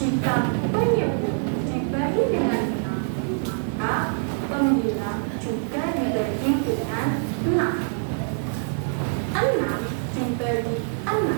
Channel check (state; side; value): silent; left; digital silence